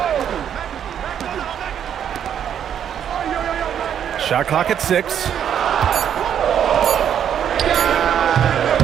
Shot clock at 6.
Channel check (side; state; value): left; quieter; 9.1 dB